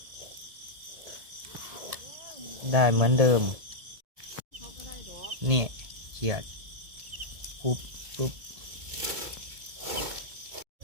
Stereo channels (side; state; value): left; late; 1.8 ms